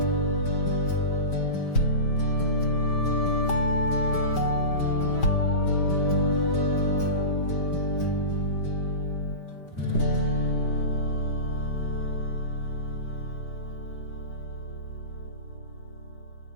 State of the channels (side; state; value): right; late; 5.1 ms